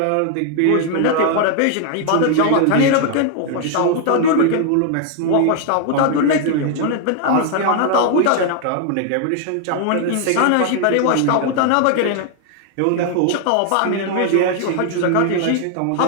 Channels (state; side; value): different; both; correlation 0.00